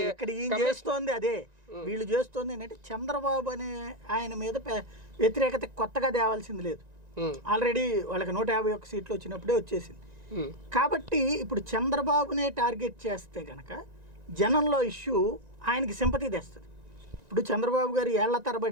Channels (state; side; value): late; left; 1.9 ms